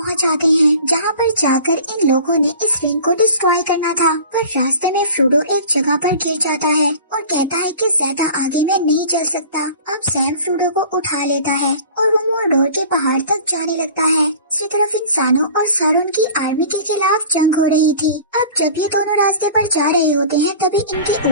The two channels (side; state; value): both; inverted; correlation -0.42